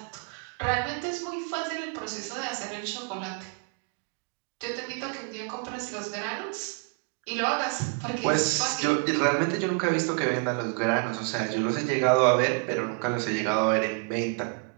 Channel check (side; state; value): left; quieter; 34.4 dB